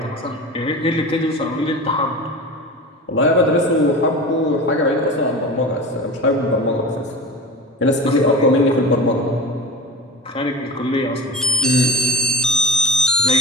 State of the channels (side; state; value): both; normal; correlation 0.32